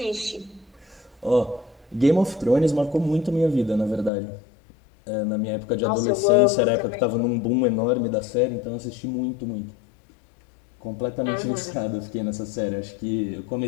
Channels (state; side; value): drops out; right; at 4.1 s